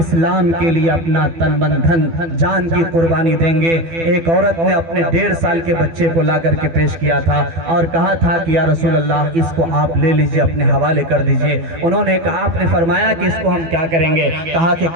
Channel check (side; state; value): left; late; 12 ms